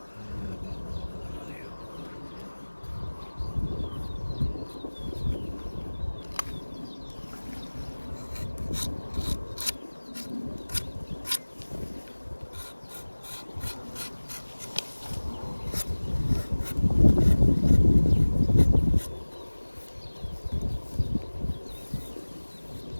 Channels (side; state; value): both; inverted; correlation -1.00